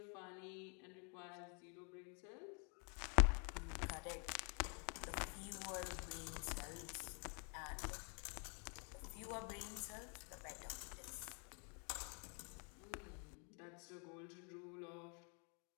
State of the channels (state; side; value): quieter; right; 37.4 dB